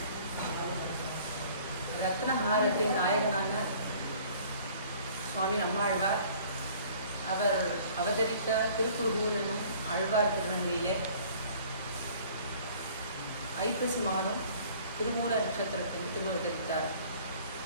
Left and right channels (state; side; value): inverted; both; correlation -0.52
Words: ரத்னஹாரத்தின் நாயகனான சுவாமி நம்மாழ்வார் அவர் அவதரித்த திருக்குறுகூர் என்னும் ஆழ்வார் திருநகரிலே ஐப்பசி மாதம் திருமூல நட்சத்திரத்தில் திருவதரித்தார்.